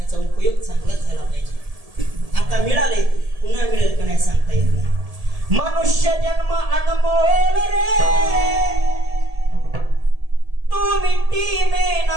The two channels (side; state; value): left; late; 1.7 ms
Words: उपयोग चांगलाच झाला पाहिजे. आता मिळाले, पुन्हा मिळेल का नाही सांगता येत नाही. मनुष्य जन्म अनमोल रे, तू मिट्टी में